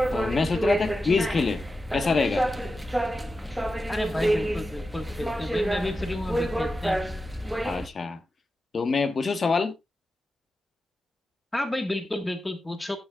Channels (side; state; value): both; normal; correlation 0.91